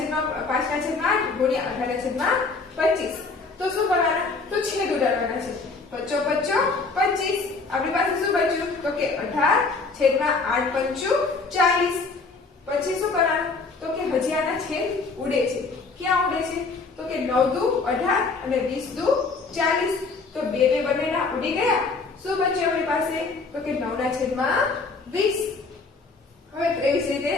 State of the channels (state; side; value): quieter; right; 4.1 dB